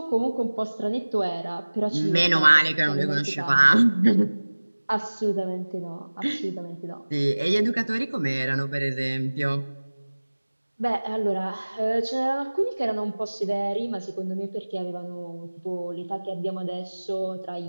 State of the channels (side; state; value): both; inverted; correlation -1.00